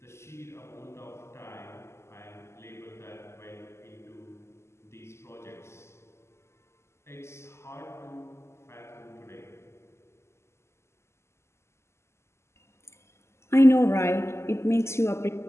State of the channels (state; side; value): late; right; 0.13 ms